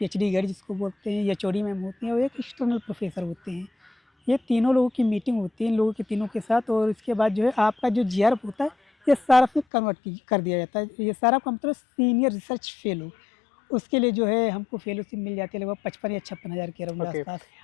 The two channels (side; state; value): right; drops out; at 9.7 s